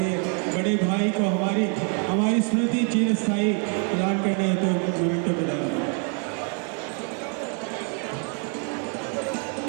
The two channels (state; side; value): quieter; left; 39.8 dB